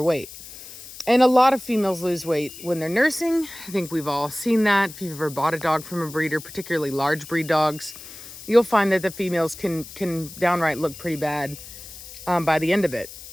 And a lot of females lose weight when they're nursing. I think we've all seen that. If you've ever bought a dog from a breeder, particularly large breed dogs, you'll find that the females can downright look pretty bad by the end of it.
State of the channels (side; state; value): left; noise; hiss, 15 dB below the sound